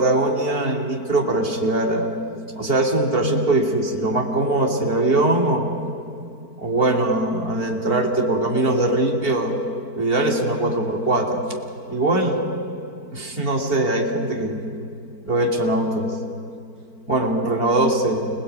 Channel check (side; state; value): right; late; 4.5 ms